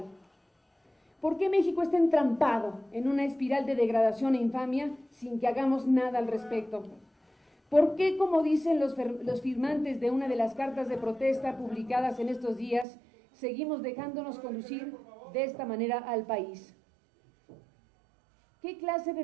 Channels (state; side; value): drops out; left; at 12.9 s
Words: ¿Por qué México está entrampado en una espiral de degradación e infamia sin que hagamos nada al respecto? ¿Por qué, como dicen los firmantes de una de las cartas de protesta publicadas en estos días, seguimos dejándonos conducir de esta manera al país? ¿Qué clase de